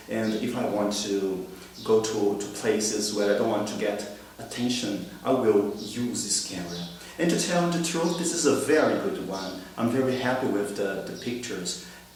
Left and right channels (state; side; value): identical; both; correlation 1.00